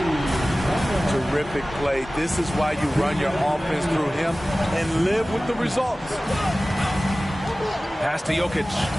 Terrific play. This is why you run your offense through him and live with the results. Pass to Jokic.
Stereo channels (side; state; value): both; normal; correlation 0.97